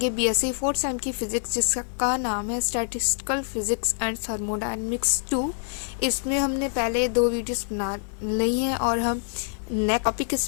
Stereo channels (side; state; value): right; silent; 61 dB below the other